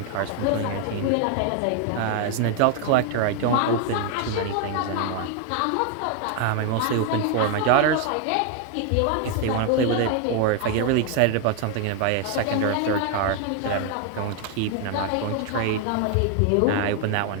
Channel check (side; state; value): both; different; correlation 0.01